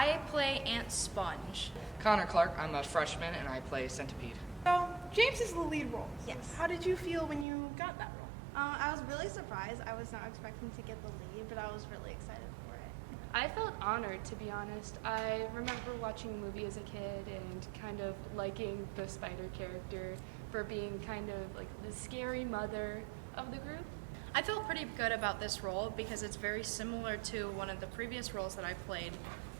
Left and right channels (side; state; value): left; drops out; at 7.5 s